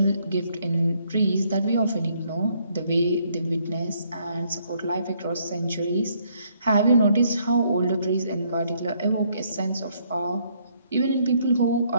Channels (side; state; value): both; inverted; correlation -0.69